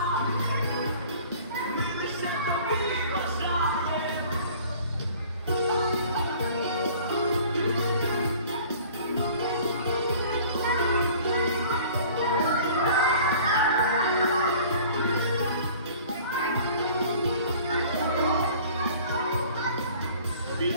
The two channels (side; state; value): both; inverted; correlation -0.49